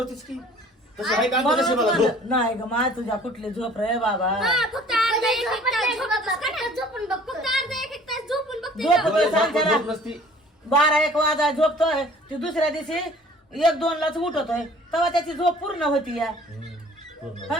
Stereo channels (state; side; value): normal; both; correlation 0.52